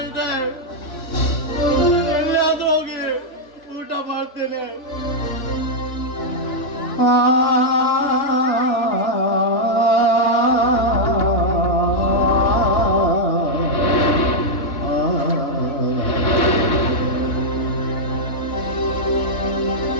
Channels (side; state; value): right; late; 3.6 ms